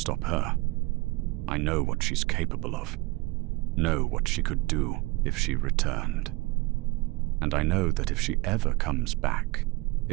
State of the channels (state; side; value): quieter; left; 23.3 dB